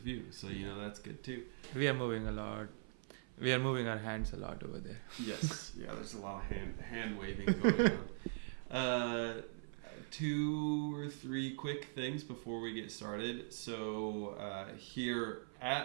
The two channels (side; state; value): left; silent; 50 dB below the other